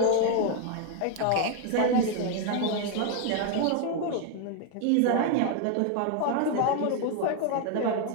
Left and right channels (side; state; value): both; different; correlation 0.00